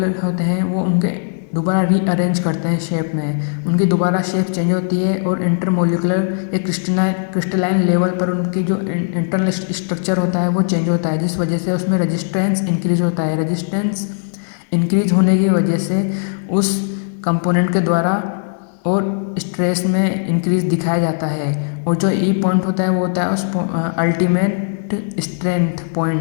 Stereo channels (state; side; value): silent; right; digital silence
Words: होते हैं वो उनके दोबारा रीअरेंज करते हैं शेप में, उनकी दोबारा शेप चेंज होती है और इंटरमोलिकुलर या क्रिस्टलाइन लेवल पर उनकी जो इंटरनल स्ट्रक्चर होता है वो चेंज होता है, जिस वजह से उसमें रेजिस्टेंस इंक्रीज होता है। रेजिस्टेंस इंक्रीज होने की वजह से उस कंपोनेंट के द्वारा और स्ट्रेस में इंक्रीज दिखाया जाता है, और जो ई पॉइंट होता है वो होता है उस अल्टीमेट स्ट्रेंथ